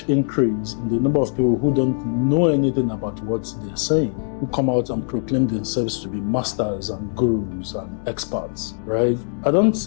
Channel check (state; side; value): silent; right; 64 dB below the other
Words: increase in the number of people who don't know anything about what they're saying, who come out and proclaim themselves to be masters and gurus and experts, right? I